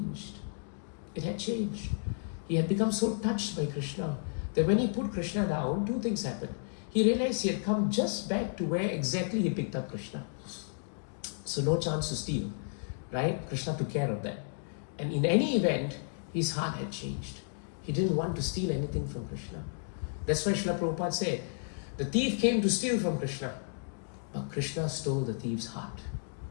It had changed. He had become so touched by Krishna that when he put Krishna down, two things happened. He realized he had come just back to where exactly he picked up Krishna. So no chance to steal, right? Krishna took care of that. And in any event, his heart had changed. He didn't want to steal anything from Krishna. That's why Srila Prabhupada said, the thief came to steal from Krishna, but Krishna stole the thief's heart.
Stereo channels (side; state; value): right; silent; digital silence